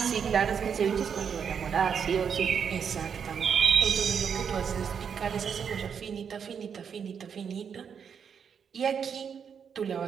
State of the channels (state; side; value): quieter; left; 7.1 dB